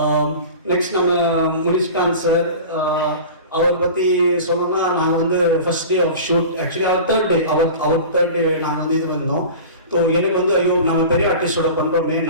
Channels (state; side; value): inverted; both; correlation -0.36